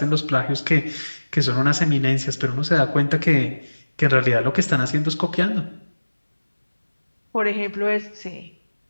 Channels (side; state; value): both; inverted; correlation -1.00